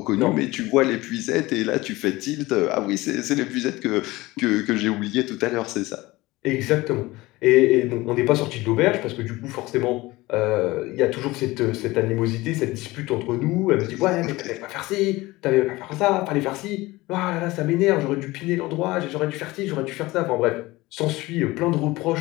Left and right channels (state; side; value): quieter; right; 20.1 dB